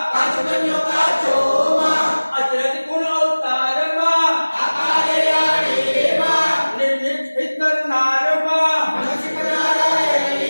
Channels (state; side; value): inverted; both; correlation -1.00